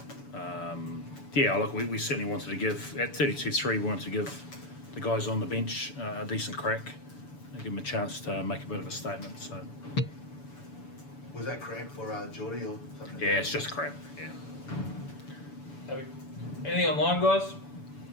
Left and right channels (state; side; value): late; right; 7.0 ms